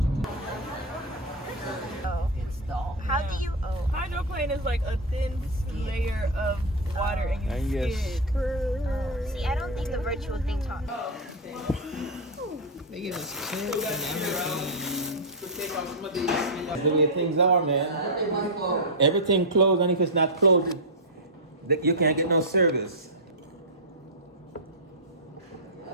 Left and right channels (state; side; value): normal; both; correlation 0.01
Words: Oh, install. How do you? Oh, Hydroplane is like a thin layer of water and you skid. see, I don't think the virtual thing taught. They give us chips and everything. That's the way things are, man. Everything closed, and if it's not closed, you can't get no service.